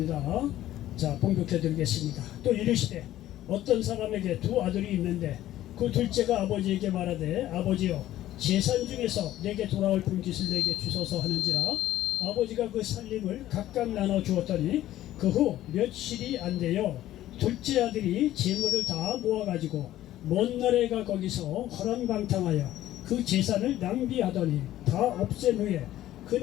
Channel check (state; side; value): quieter; right; 13.8 dB